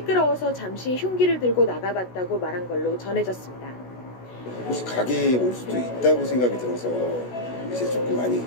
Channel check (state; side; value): late; right; 16 ms